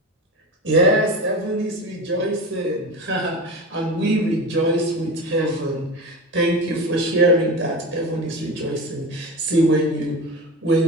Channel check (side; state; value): both; normal; correlation 0.27